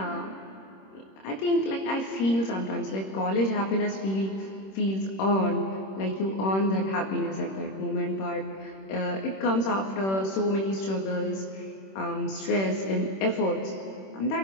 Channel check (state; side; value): late; right; 26 ms